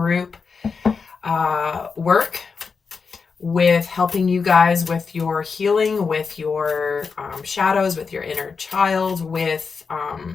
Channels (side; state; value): right; quieter; 5.2 dB